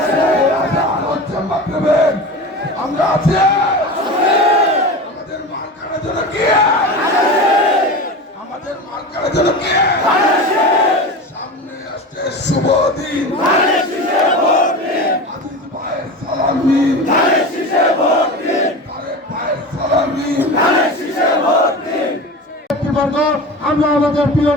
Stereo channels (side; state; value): both; normal; correlation 0.29